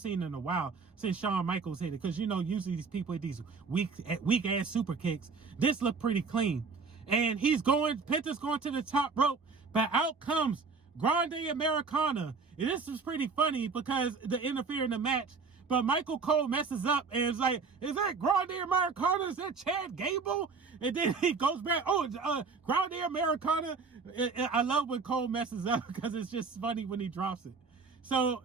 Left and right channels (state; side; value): quieter; left; 4.8 dB